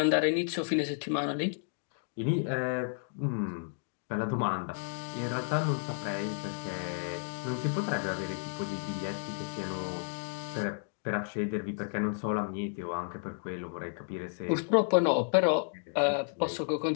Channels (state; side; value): silent; right; digital silence